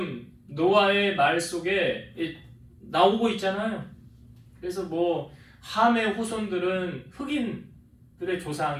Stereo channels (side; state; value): both; identical; correlation 1.00